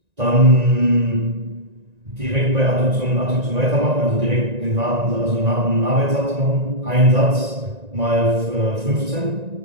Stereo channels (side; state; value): left; late; 1.9 ms